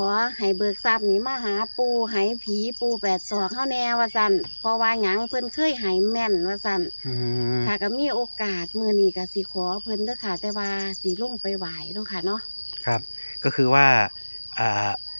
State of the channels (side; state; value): both; inverted; correlation -1.00